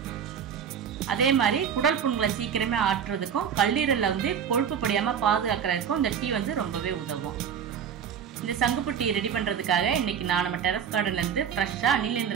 அதே மாதிரி குடல் புண்களை சீக்கிரமே ஆற்றுறதுக்கும் கல்லீரலில் கொழுப்பு படியாமல் பாதுகாக்கிறதுக்கும் இந்த டீ ரொம்பவே உதவும். இந்த சங்குப்பூ டீ ரெடி பண்ணுறதுக்காக இன்றைக்கி நான் நம்ம டெரஸ் கார்டன்லேருந்து ஃப்ரெஷ்ஷாக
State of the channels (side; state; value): left; quieter; 7.9 dB